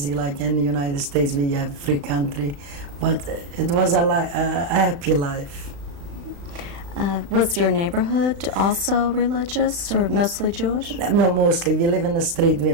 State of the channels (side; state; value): left; late; 35 ms